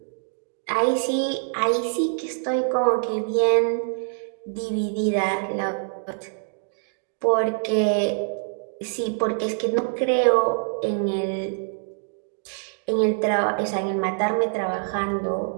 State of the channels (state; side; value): silent; left; digital silence